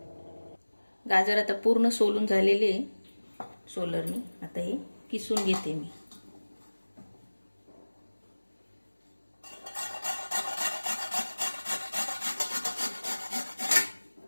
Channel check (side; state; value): both; inverted; correlation -1.00